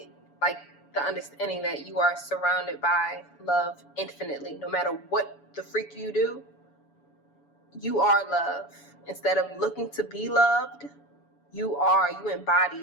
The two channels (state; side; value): late; right; 7.0 ms